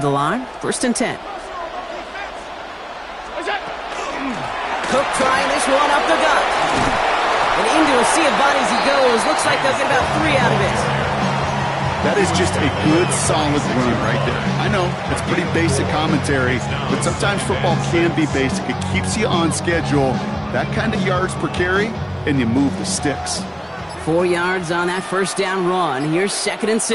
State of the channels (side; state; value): both; identical; correlation 1.00